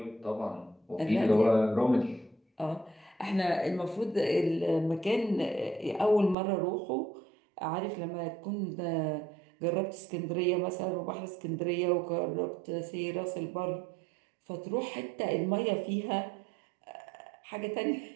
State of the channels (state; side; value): drops out; left; at 6.4 s